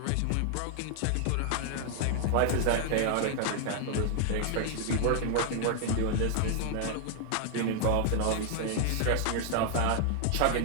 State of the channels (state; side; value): different; both; correlation 0.00